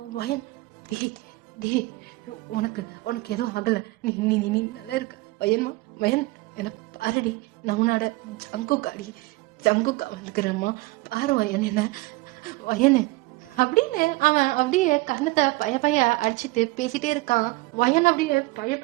வயன் உனக்கு உனக்கு எதுவும் ஆகல, நீ நீ நீ நல்லா இருக்க வயன்மா. வயன் என்ன பாருடி, நான் உன்னோட ஜங்குக்காடி, ஜங்குக்கா வந்துக்கிறேம்மா, பாரு வயன் என்ன வயனு அப்படின்னு அவன் அப்படியே கண்ணத்தை பய அடிச்சுட்டு பேசிட்டே இருக்கான். வயன் அப்படியே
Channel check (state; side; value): quieter; left; 21.7 dB